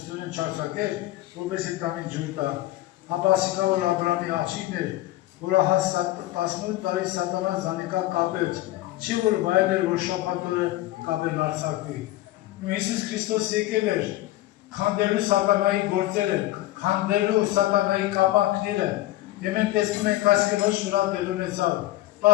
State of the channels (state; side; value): quieter; right; 16.3 dB